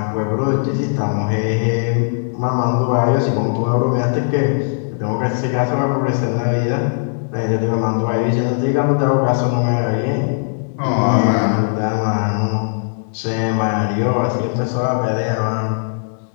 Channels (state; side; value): silent; right; digital silence